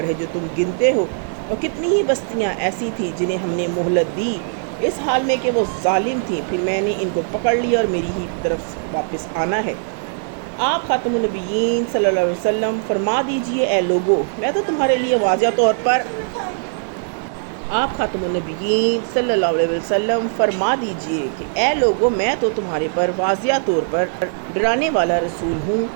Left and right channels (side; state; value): left; silent; digital silence